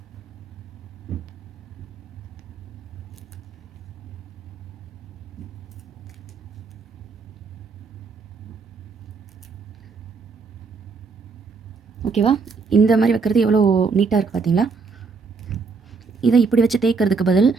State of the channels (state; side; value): quieter; left; 4.8 dB